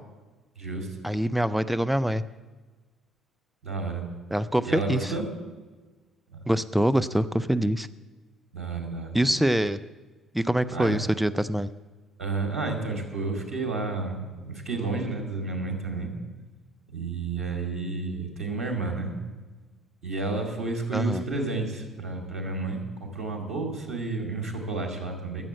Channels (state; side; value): normal; both; correlation 0.68